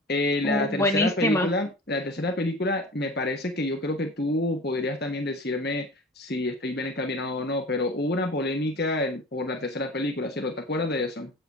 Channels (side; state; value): both; normal; correlation 0.37